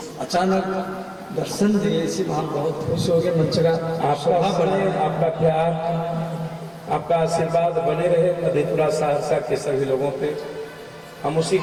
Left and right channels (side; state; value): both; identical; correlation 1.00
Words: अचानक दर्शन दिए, इसी हम बहुत खुश हो गए। मंच का आपका बने, आपका प्यार, आपका आशीर्वाद बने रहे मधेपुरा सहरसा के सभी लोगों पे। हम उसी